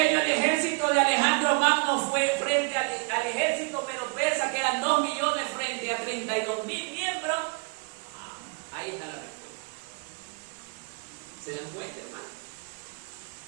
el ejército de Alejandro Magno fue frente al ejército medo-persa, que eran 2 millones frente a 32,000 miembros. Ahí está la respuesta. ¿Se dan cuenta, hermano?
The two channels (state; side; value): quieter; left; 33.5 dB